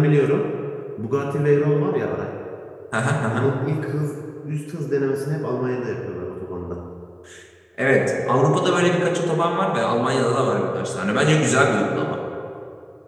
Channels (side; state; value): both; identical; correlation 1.00